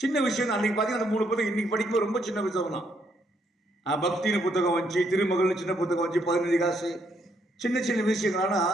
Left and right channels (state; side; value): normal; both; correlation 0.73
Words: சின்ன விஷயம் தான். அன்றைக்கி பார்த்தீங்கன்னா அந்த 3 புத்தகம் இன்றைக்கி படிக்கும்போது ரொம்ப சின்ன புத்தகம் தான். பக்தின்னு புத்தகம் வந்துச்சு, திருமகள்னு சின்ன புத்தகம் வந்துச்சு, 15 காசு, சின்ன சின்ன விஷயங்கள்.